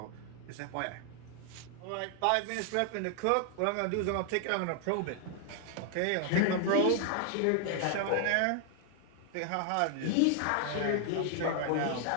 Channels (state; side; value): different; both; correlation 0.00